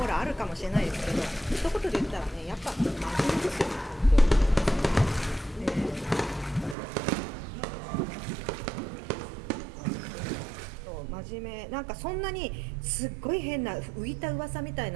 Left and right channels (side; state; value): left; drops out; at 6.8 s